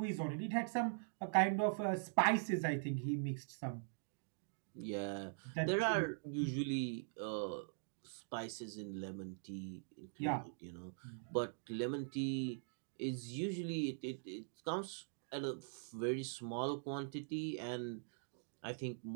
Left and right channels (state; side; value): silent; left; digital silence